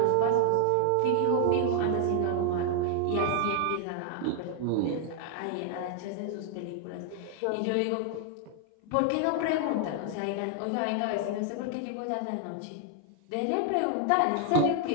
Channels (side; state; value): both; different; correlation 0.00